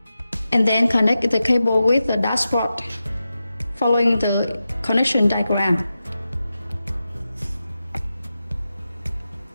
And then connect the cable with the dashboard, following the connection diagram.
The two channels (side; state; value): both; inverted; correlation -0.91